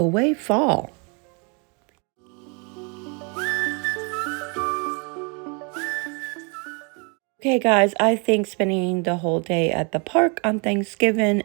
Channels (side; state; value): left; quieter; 33.9 dB